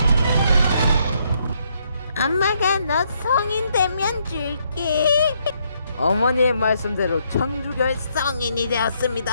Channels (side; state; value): both; inverted; correlation -0.73